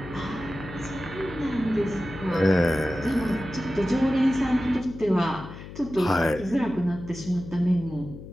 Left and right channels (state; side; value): noise; left; hum, 13 dB below the sound